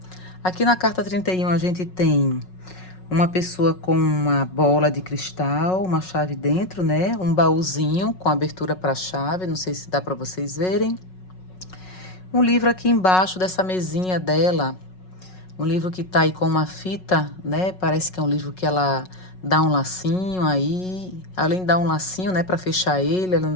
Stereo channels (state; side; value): late; right; 5.4 ms